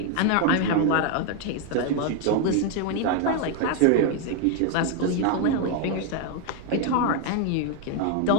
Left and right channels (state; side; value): different; both; correlation 0.01